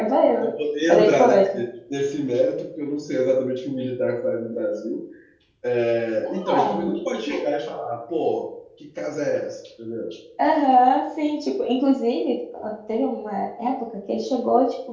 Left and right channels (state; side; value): identical; both; correlation 1.00